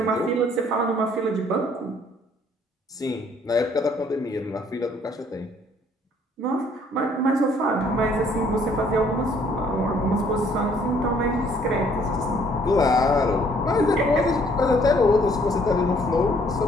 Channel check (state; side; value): normal; both; correlation 0.62